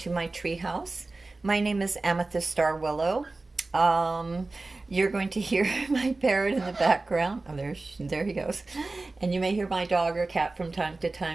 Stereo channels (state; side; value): quieter; left; 3.3 dB